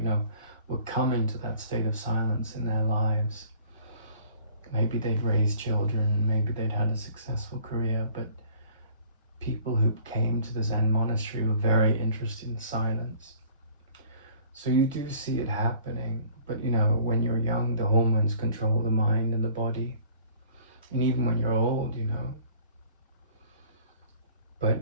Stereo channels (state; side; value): inverted; both; correlation -0.53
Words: were coming to that state of silence in their lives. Maybe they'd raised children, maybe they'd had a successful career, but people who came to the Zen monastery were very interested in silence. So you do see it happening, but when you're young, the hormones control the mind and the body. And even when you're old, But